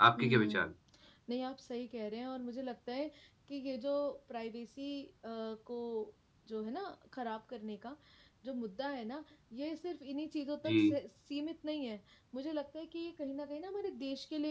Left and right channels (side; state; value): both; identical; correlation 1.00